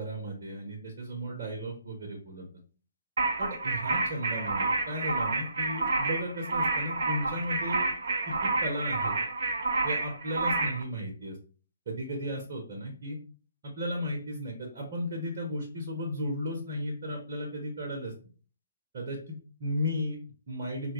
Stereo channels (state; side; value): inverted; both; correlation -0.71